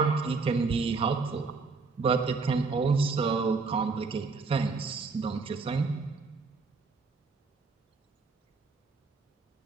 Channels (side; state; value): left; quieter; 4.4 dB